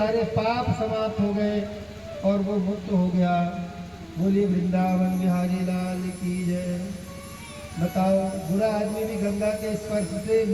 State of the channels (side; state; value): both; identical; correlation 1.00